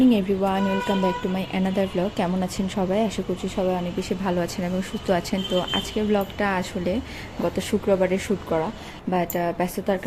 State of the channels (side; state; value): both; identical; correlation 1.00